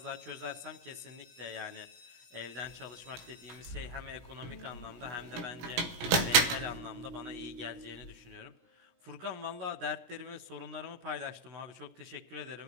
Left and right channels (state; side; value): late; left; 17 ms